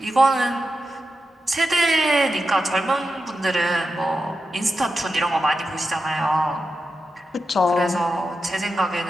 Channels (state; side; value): normal; both; correlation 0.89